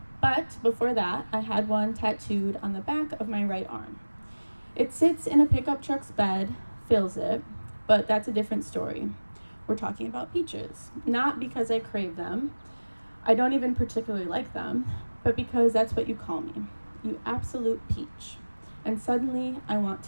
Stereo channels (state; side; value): inverted; both; correlation -1.00